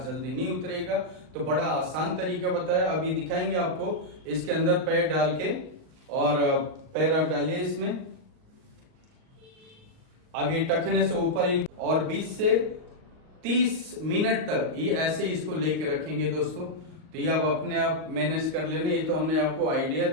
जल्दी नहीं उतरेगा। तो बड़ा आसान तरीका बताया, अभी दिखाएंगे आपको। इसके अंदर पैर डाल के, और पैर आप डालिए इसमें। अब ये टखने से ऊपर और 20 से 30 मिनट तक ये ऐसे इसको लेके रखेंगे दोस्तों। तो ये आप अपने आप मैनेज कर लेना। ये तो हमने आपको आइडिया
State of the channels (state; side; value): late; left; 38 ms